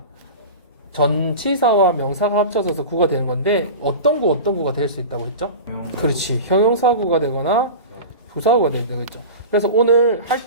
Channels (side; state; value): both; inverted; correlation -0.30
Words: 전치사와 명사가 합쳐져서 구가 되는 건데 어떤 구가 될 수 있다고 했죠? 그렇지. 형용사구가 되거나 부사구가 되는 거죠. 그래서 오늘 할